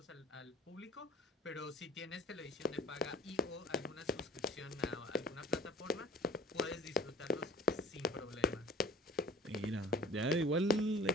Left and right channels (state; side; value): normal; both; correlation 0.46